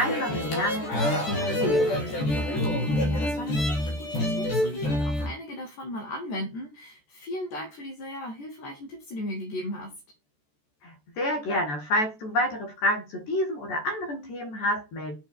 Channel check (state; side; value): late; right; 14 ms